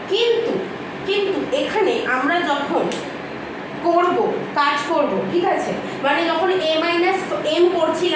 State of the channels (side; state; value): both; identical; correlation 1.00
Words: কিন্তু এখানে আমরা যখন কাজ করব, ঠিক আছে, মানে যখন a মাইনাস এম